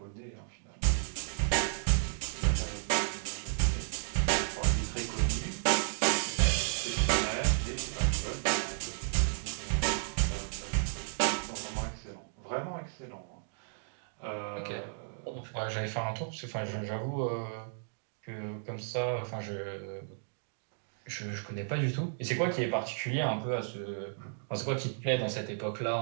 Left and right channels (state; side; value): silent; left; digital silence